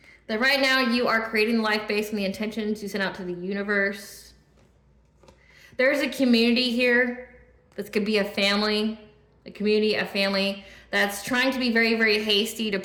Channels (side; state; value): both; identical; correlation 1.00